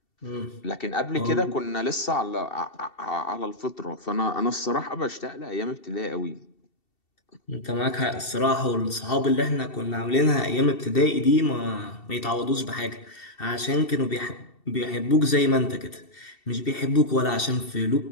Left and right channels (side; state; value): right; late; 2.7 ms